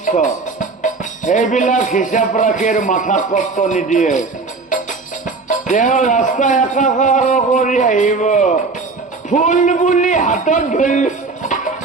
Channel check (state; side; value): quieter; left; 4.0 dB